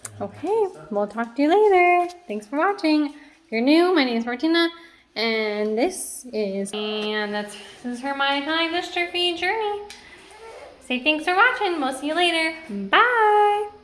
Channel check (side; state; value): both; identical; correlation 1.00